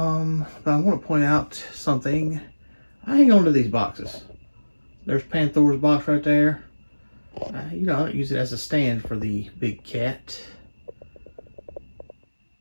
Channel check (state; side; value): inverted; both; correlation -1.00